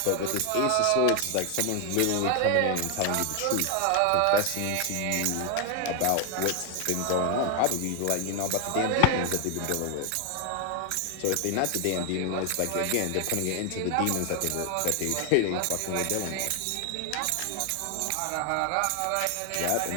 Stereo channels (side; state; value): both; different; correlation 0.01